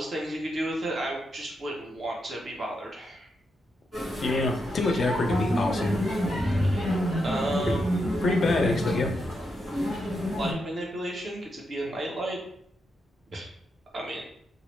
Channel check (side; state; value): both; normal; correlation 0.83